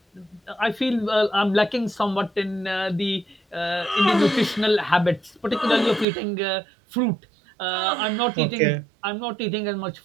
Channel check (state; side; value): drops out; left; at 6.1 s